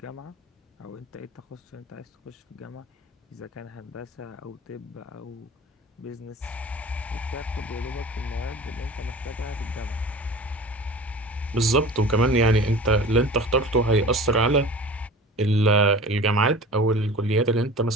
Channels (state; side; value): normal; both; correlation 0.39